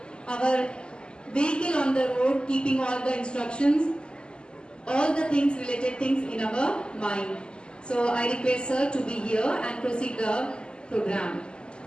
our vehicle on the road, keeping all the instructions, all the things, related things in our mind. So I request sir to be here and proceed the program.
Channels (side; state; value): right; late; 0.049 ms